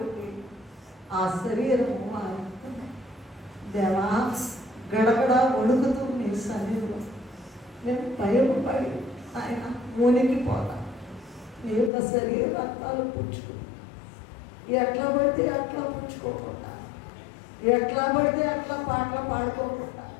ఆ శరీరము మారుతుంది. దేవా, గడగడ వణుకుతూ నీ సన్నిధిలో నేను భయపడి ఆయన మునిగిపోతా. నీ యొక్క శరీర రక్తాలు పుచ్చుకు ఎట్లా పడితే అట్లా పుచ్చుకోకుండా, ఎట్లా పడితే అట్లా పాటలు పాడుకోకుండా,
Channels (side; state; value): right; drops out; at 11.9 s